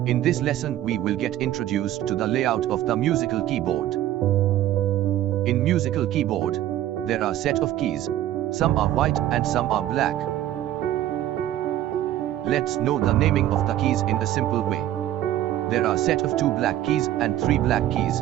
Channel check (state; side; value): quieter; left; 13.0 dB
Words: this lesson we will get introduced to the layout of the musical keyboard. In musical keyboard, there are set of keys. Some are white and some are black. Let's know the naming of the keys in a simple way. There are set of 2 black keys and 3 black keys.